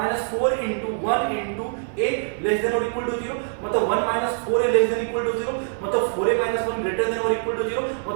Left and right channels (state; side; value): silent; left; 63 dB below the other